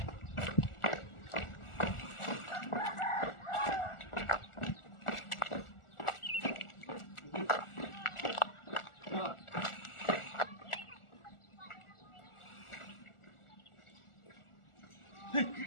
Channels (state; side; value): late; right; 1.4 ms